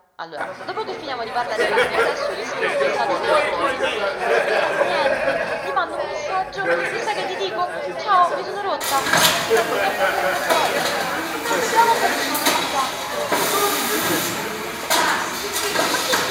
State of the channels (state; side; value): identical; both; correlation 1.00